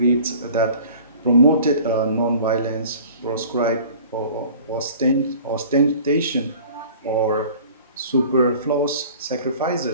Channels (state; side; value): inverted; both; correlation -0.46